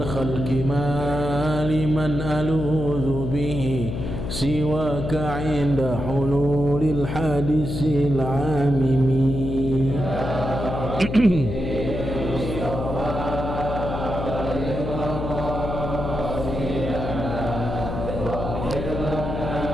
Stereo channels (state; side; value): noise; left; hum, 4 dB below the sound